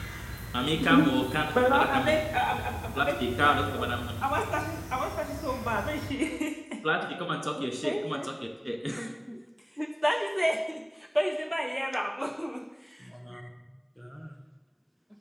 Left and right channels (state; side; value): identical; both; correlation 1.00